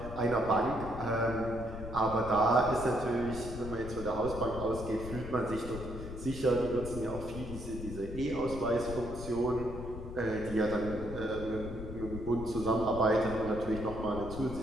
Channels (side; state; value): left; noise; rumble, 9 dB below the sound